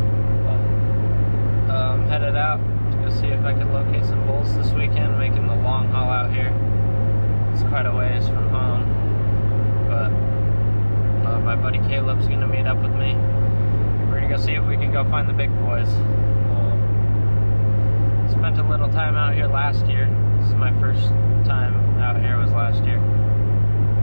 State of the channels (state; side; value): inverted; both; correlation -1.00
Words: But I'm headed out to go see if I can locate some bulls this weekend, making the long haul out here. It's quite a ways from home, but my buddy Caleb's gonna meet up with me. We're gonna go see if we can go find the big boys. Spent a little time out here last year. This is my first time out here, was last year,